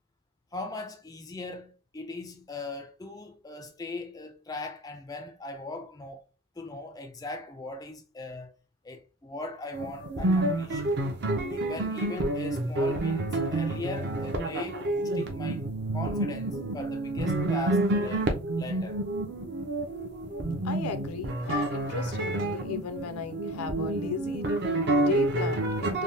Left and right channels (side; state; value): both; normal; correlation 0.38